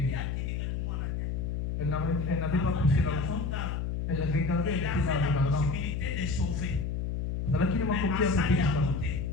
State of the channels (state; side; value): noise; left; hum, 2 dB below the sound